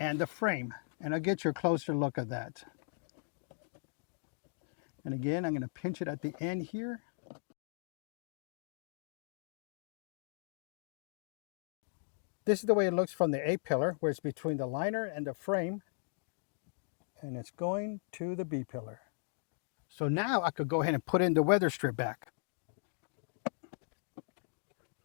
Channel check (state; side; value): silent; right; digital silence